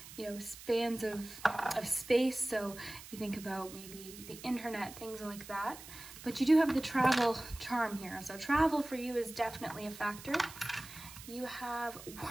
spans of space. So if you think about maybe the internet, things like that. But you do have the travel charm here. So travel for you is definitely a factor. You have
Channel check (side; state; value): right; noise; hiss, 15 dB below the sound